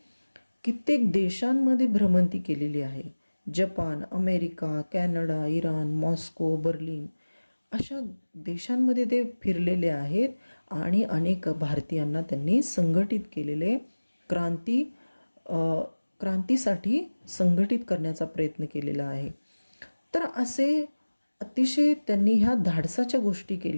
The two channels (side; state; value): both; inverted; correlation -1.00